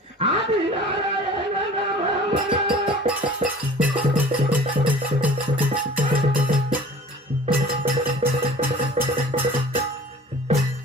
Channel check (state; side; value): normal; both; correlation 0.45